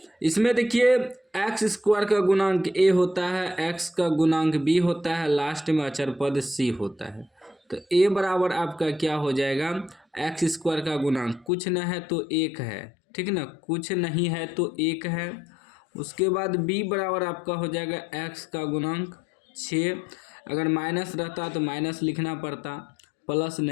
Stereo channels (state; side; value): drops out; right; at 11.5 s